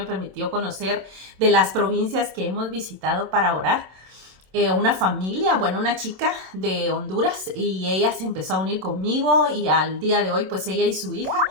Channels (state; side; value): late; left; 27 ms